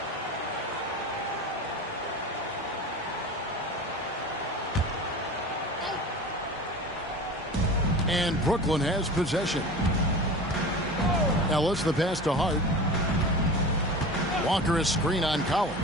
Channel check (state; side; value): normal; both; correlation 0.33